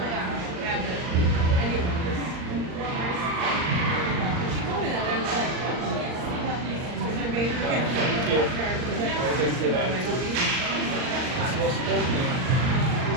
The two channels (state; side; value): late; left; 39 ms